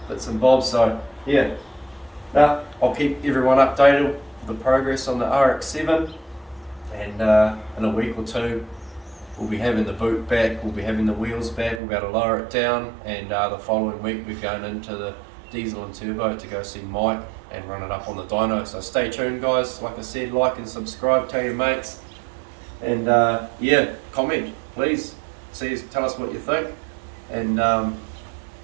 bits and bobs. So yeah, I'll keep everyone updated with the progress on the RX7, and in a week or two we'll be having the boot back, we'll be having the wheels back, we'll be able to lower it down, and the following week we're going into the Diesel and Turbo to go see Mike and run it up on the dyno. So stay tuned, guys. Like I said, like and subscribe, tell your mates, and yeah, comment please. Tell us what you think, and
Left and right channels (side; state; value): left; drops out; at 11.8 s